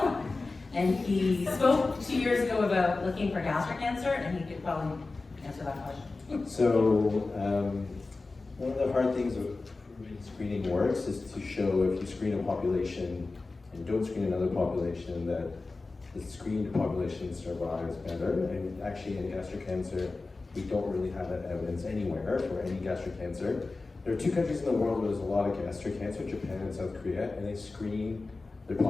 and he spoke 2 years ago about looking for gastric cancer, and he could probably answer that question. So, one of the hard things of proving screening works is to show if you screen a population and don't screen another population that the screened population survives better. And actually in gastric cancer, we don't really have that evidence anywhere for any gastric cancer. There are 2 countries in the world where there's a lot of gastric cancer, Japan and South Korea, and they screen their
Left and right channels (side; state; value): right; quieter; 3.6 dB